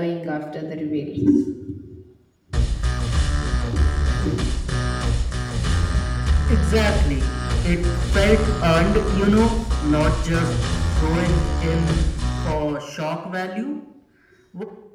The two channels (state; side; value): identical; both; correlation 1.00